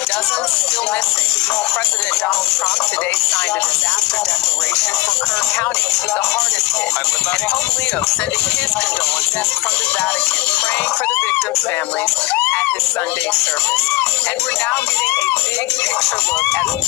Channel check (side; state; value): right; quieter; 21.6 dB